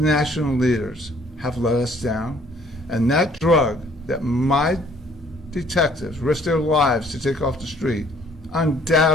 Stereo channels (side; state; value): both; normal; correlation 0.60